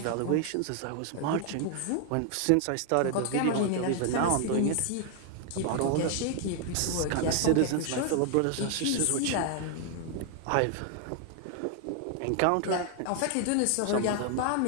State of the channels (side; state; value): both; different; correlation 0.00